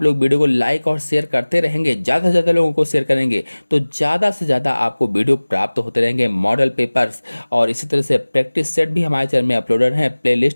लोग वीडियो को लाइक और शेयर करते रहेंगे, ज़्यादा से ज़्यादा लोगों को शेयर करेंगे, तो ज़्यादा से ज़्यादा आपको वीडियो प्राप्त होते रहेंगे, मॉडल पेपर्स और इसी तरह से प्रैक्टिस सेट भी हमारे चैनल में अपलोडेड हैं,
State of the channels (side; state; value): both; inverted; correlation -1.00